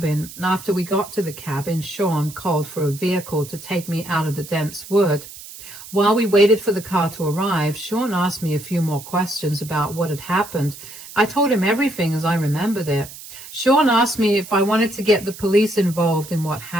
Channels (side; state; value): right; noise; hiss, 15 dB below the sound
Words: After we got to the cabin, Sean called for a vehicle to take me out of the dense wood. While we waited for the car to arrive, Sean asked me a few more questions about what had happened. I told him everything as I remembered it. Sean asked me if I wanted to get the police involved in what